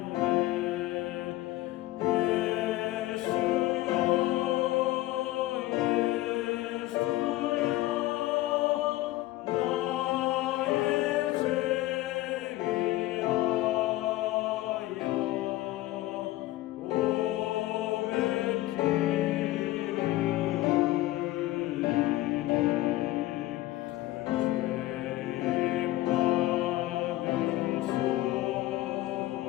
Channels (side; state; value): right; quieter; 17.0 dB